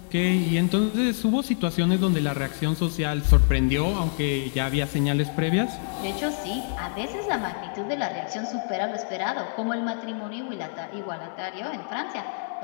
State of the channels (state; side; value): silent; right; 61 dB below the other